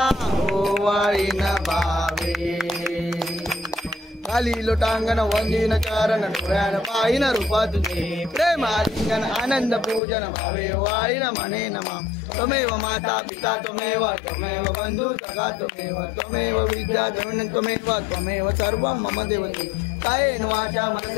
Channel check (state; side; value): drops out; right; at 10.0 s